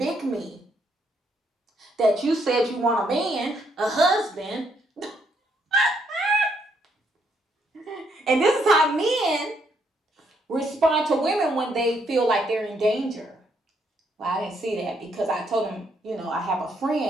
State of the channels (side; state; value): both; normal; correlation 0.73